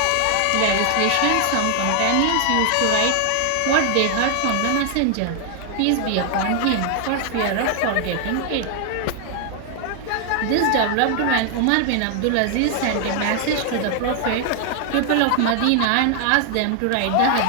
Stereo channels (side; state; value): both; different; correlation 0.00